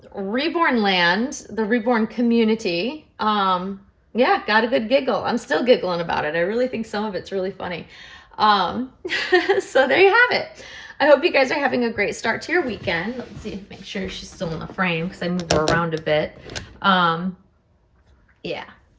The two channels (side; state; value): both; identical; correlation 1.00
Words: Reborn Land, the Reborn community. Yeah, got a good giggle. I'm still giggling about it. I really think some of it's really funny. So there you have it. I hope you guys are having a great start to your weekend. Let's see, make sure she's still in the frame, because I move her around a bit. Yeah,